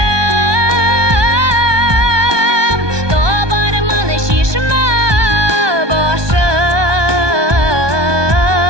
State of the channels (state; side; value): late; left; 1.2 ms